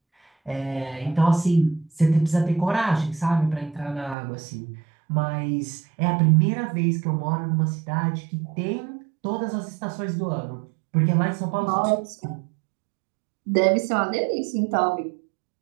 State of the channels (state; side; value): drops out; left; at 4.2 s